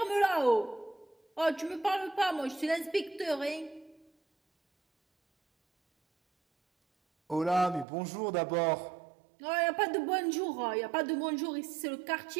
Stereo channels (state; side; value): drops out; left; at 7.9 s